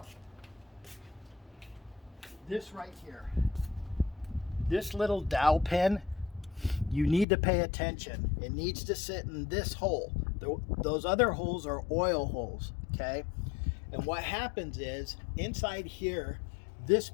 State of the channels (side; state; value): right; drops out; at 7.2 s